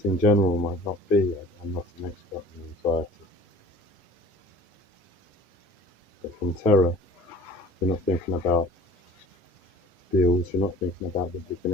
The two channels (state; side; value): normal; both; correlation 0.46